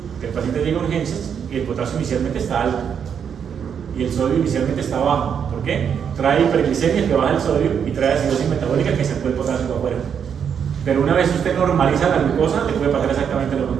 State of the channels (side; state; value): left; quieter; 7.6 dB